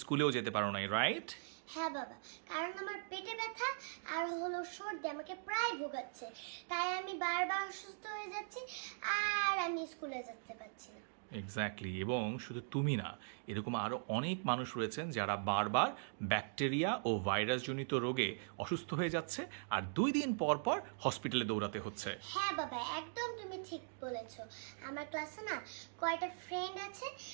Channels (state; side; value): silent; left; digital silence